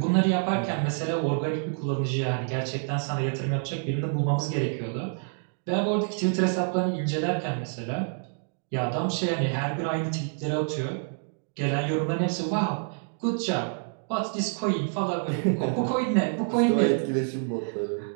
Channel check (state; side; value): silent; left; 55 dB below the other